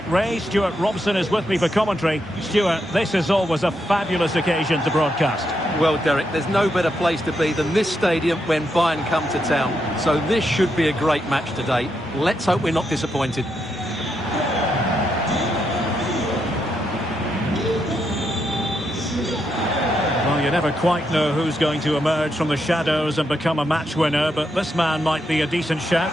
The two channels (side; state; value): both; normal; correlation 0.81